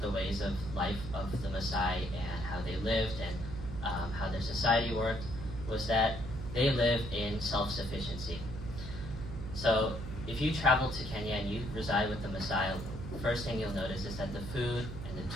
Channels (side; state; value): right; noise; hum, 8 dB below the sound